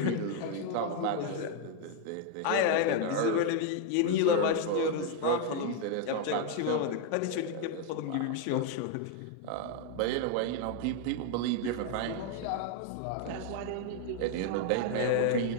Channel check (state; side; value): different; both; correlation 0.01